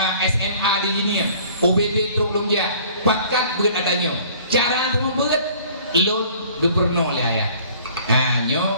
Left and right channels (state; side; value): inverted; both; correlation -0.52